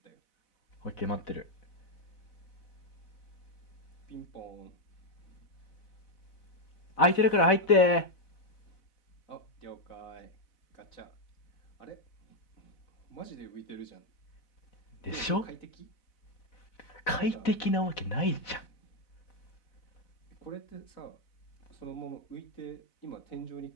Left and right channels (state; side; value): late; right; 4.0 ms